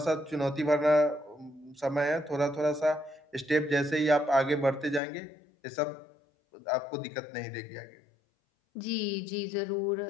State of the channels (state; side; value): drops out; right; at 5.0 s